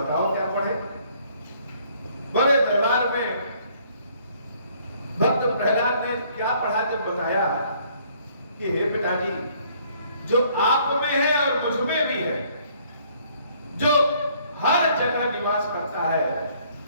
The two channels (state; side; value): inverted; both; correlation -0.62